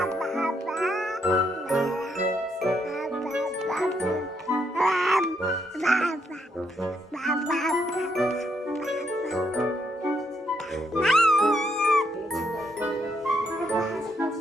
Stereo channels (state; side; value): normal; both; correlation 0.75